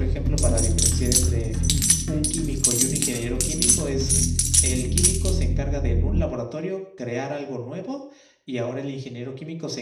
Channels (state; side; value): identical; both; correlation 1.00